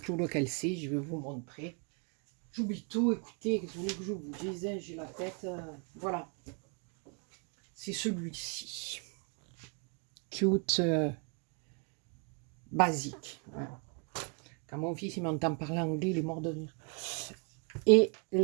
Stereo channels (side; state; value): left; quieter; 35.7 dB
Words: lequel c'est. Je vais vous montrer. J'oublie tout. Écoutez, vous voulez que je vous dise, hein, j'ai la tête. Voilà. C'est celui-ci. Cute. Basique. Voilà. Quand mon fils il m'entend parler anglais, il est mort de rire. Et